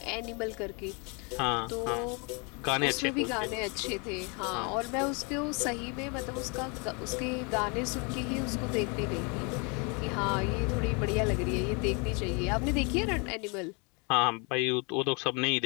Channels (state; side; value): quieter; right; 32.1 dB